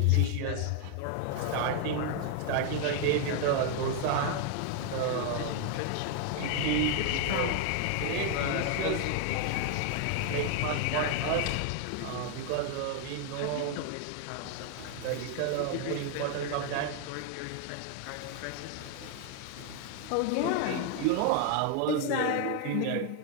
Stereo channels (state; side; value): different; both; correlation 0.00